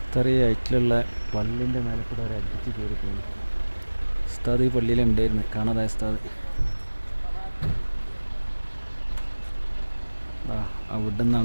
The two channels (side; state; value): both; inverted; correlation -1.00